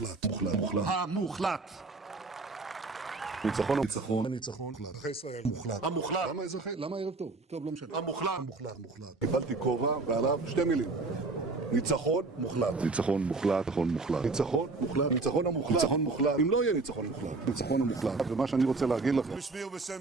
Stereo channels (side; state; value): left; quieter; 3.6 dB